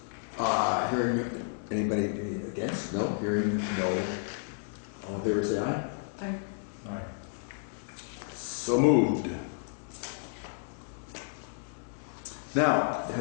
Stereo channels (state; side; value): silent; right; digital silence